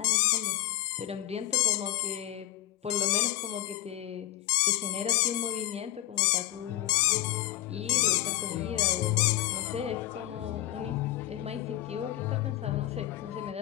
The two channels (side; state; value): right; quieter; 14.1 dB